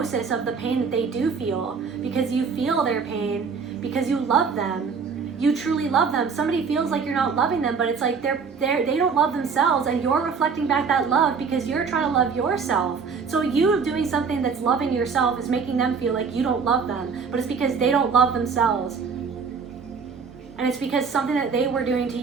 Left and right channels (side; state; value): left; quieter; 5.6 dB